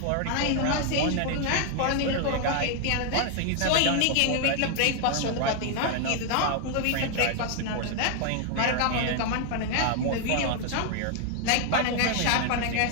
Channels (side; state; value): both; different; correlation 0.00